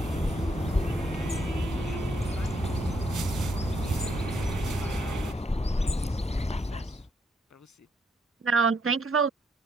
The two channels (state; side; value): normal; both; correlation 0.74